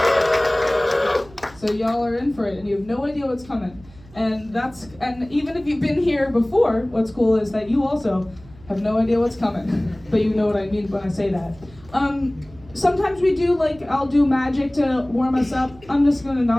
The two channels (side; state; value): right; noise; hum, 23 dB below the sound